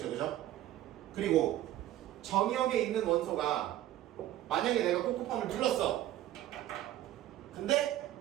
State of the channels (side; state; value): left; quieter; 13.5 dB